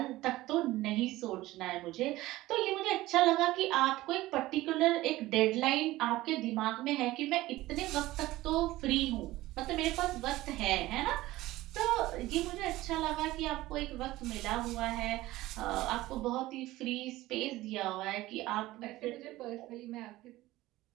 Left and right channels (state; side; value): quieter; left; 17.3 dB